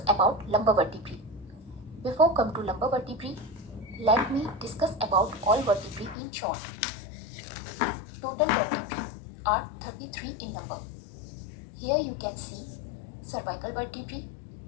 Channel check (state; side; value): drops out; right; at 6.2 s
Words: about lumbar vertebrae. Before come to lumbar vertebrae, let me discuss about all vertebrae in short. Total vertebrae are 33 in number. Here you can see cervical vertebrae,